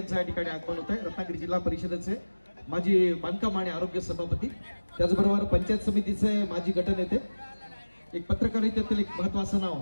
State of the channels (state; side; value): inverted; both; correlation -1.00